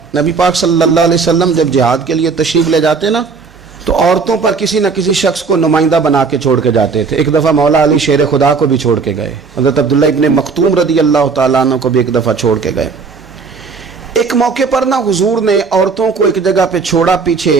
نبی پاک صلی اللہ علیہ وسلم جب جہاد کے لیے تشریف لے جاتے نا تو عورتوں پر کسی نہ کسی شخص کو نمائندہ بنا کے چھوڑ کے جاتے تھے. ایک دفعہ مولا علی شیر خدا کو بھی چھوڑ کے گئے, حضرت عبداللہ ابن مختوم رضی اللہ تعالیٰ عنہ کو بھی ایک دفعہ چھوڑ کے گئے. ایک موقع پر نا حضور نے عورتوں کو ایک جگہ پہ چھوڑا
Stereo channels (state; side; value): quieter; left; 4.9 dB